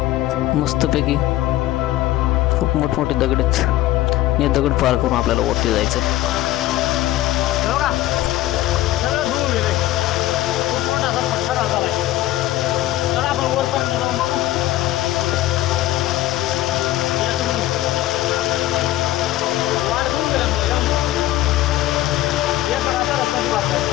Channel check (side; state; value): right; quieter; 15.1 dB